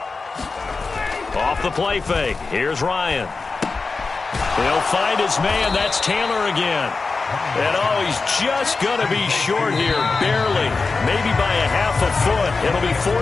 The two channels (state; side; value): quieter; right; 4.2 dB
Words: Off the play fake. Here's Ryan. He'll find his man. That's Taylor again. And oh, he's just going to be short here. Barely. Maybe by a half a foot. It'll be